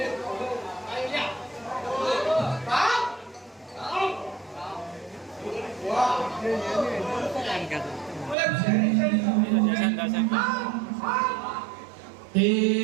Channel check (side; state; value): left; drops out; at 8.3 s